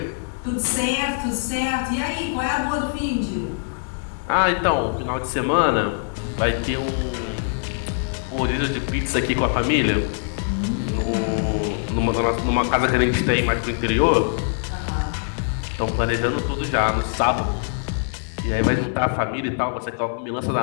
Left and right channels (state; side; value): silent; right; 63 dB below the other